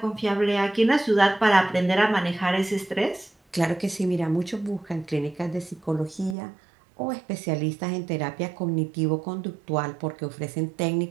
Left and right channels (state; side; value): drops out; left; at 6.4 s